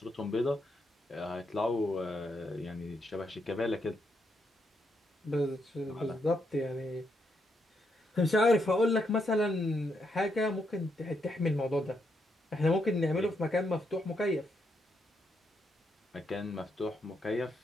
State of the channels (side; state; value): both; normal; correlation 0.79